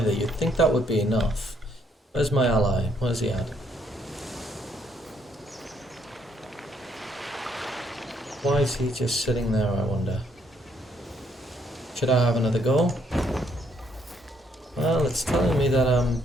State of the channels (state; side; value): normal; both; correlation 0.71